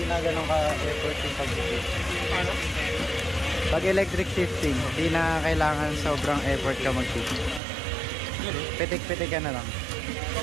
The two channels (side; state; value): left; drops out; at 7.6 s